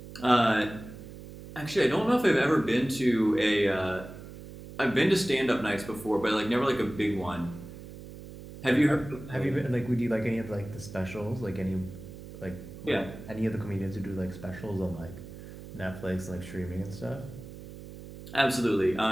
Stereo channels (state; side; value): noise; right; hum, 14 dB below the sound